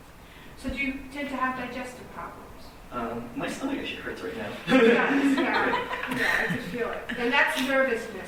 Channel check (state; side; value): identical; both; correlation 1.00